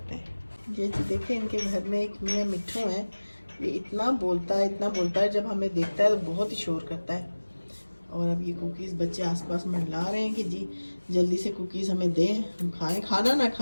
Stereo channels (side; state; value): both; inverted; correlation -1.00